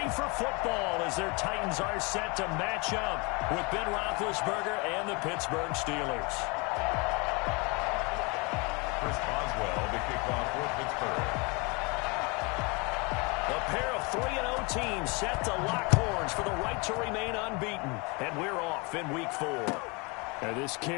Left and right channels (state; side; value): quieter; right; 29.2 dB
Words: for football as their Titans are set to match up with Ben Roethlisberger and the Pittsburgh Steelers. Chris Boswell, the kickoff for Pittsburgh. A pair of 3-0 teams set to lock horns for the right to remain unbeaten. And we're off in week 4. And this